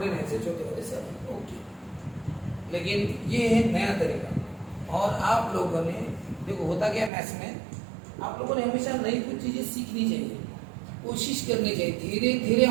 से छोटे वाले सब ओके। लेकिन ये है नया तरीका, और आप लोगों ने देखो होता क्या मैथ्स में, आप लोगों ने हमेशा नई कुछ चीजें सीखनी चाहिए, कोशिश करनी चाहिए, धीरे धीरे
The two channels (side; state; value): left; drops out; at 7.1 s